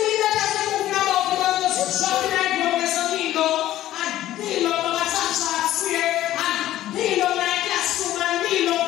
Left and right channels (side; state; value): right; quieter; 13.9 dB